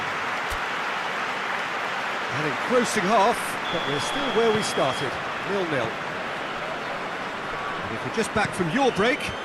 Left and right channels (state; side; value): identical; both; correlation 1.00